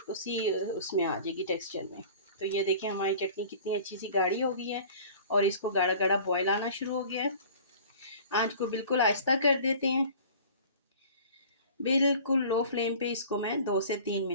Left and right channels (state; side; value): inverted; both; correlation -0.44